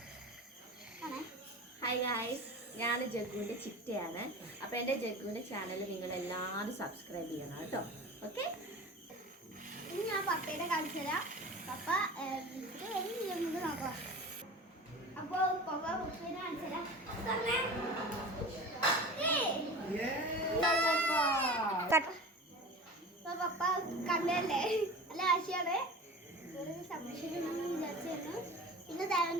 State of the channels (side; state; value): both; normal; correlation 0.35